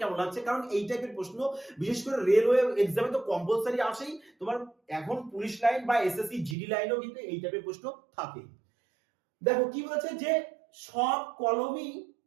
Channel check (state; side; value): drops out; left; at 6.6 s